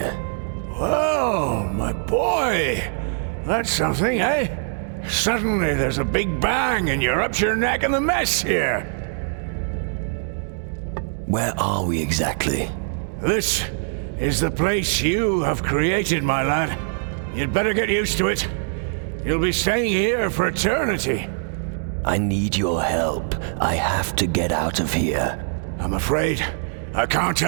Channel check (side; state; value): left; silent; digital silence